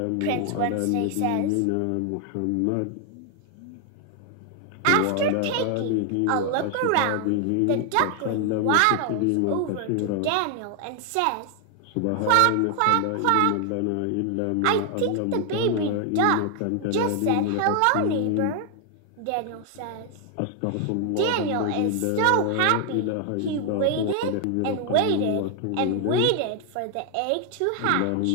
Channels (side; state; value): both; different; correlation 0.00